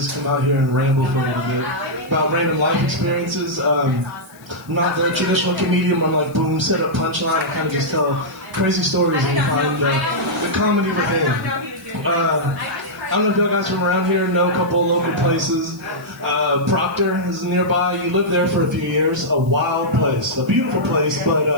come out here and ramble for a little bit about random life experiences. I'm not the traditional comedian where I'm like, boom, set up punchline. I kind of just tell crazy stories and find the comedy within. I don't know if y'all guys from around here know a couple of local places. Proctor is nearby. You lived there for a few years. A wild place. A beautiful place, but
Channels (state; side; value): noise; left; hiss, 26 dB below the sound